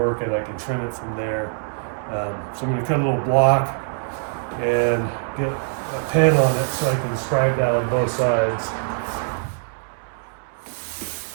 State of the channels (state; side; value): silent; left; 63 dB below the other